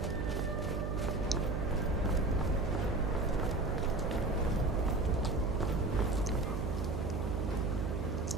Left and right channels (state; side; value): noise; right; hum, 1 dB below the sound